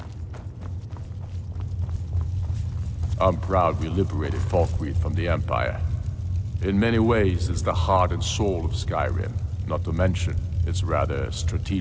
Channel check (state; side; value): identical; both; correlation 1.00